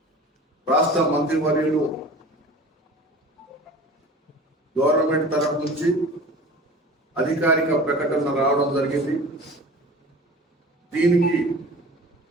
రాష్ట్ర మంత్రివర్యులు గవర్నమెంట్ తరఫు నుంచి అధికారిక ప్రకటన రావడం జరిగింది. దీనికి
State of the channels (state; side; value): normal; both; correlation 0.40